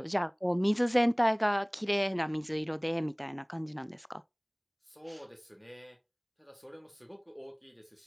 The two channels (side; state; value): both; identical; correlation 1.00